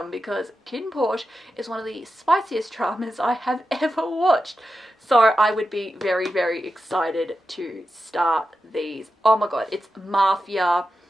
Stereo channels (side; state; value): both; normal; correlation 0.90